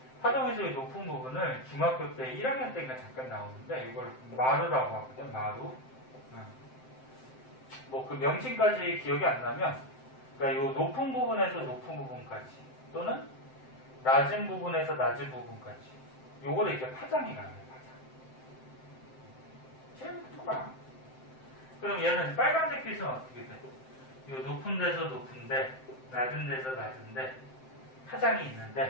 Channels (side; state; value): right; late; 7.7 ms